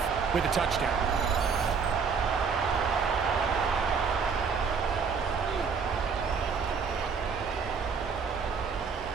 with a touchdown.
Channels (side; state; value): left; quieter; 5.7 dB